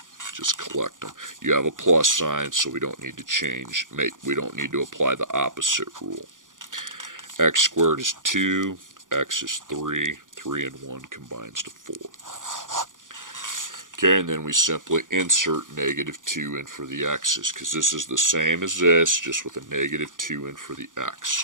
Just collect them. You have a plus sign, so we don't need to change. We don't need to apply the opposite rule. X squared is 2, x is 3, 3 and 1 combines to 4. Okay, and then we simply insert negative 2 in for the x's, because this is the same as this, just with a negative 2 in for the x.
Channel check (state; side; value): late; left; 0.88 ms